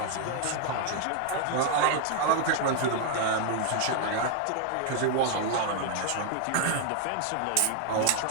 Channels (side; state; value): both; different; correlation 0.00